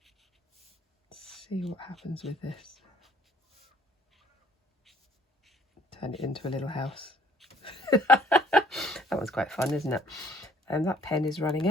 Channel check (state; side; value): normal; both; correlation 0.60